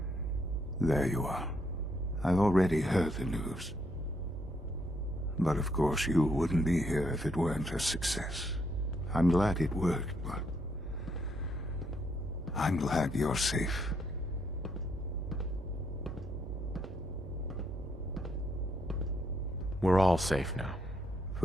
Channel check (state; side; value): normal; both; correlation 0.74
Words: There you are. I've already heard the news. But of course you wouldn't be here if it weren't a success. I'm glad it worked, but I'm glad you're safe. We're all safe now.